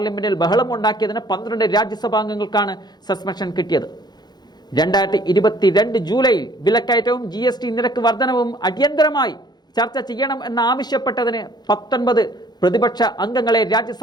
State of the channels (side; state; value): right; late; 0.20 ms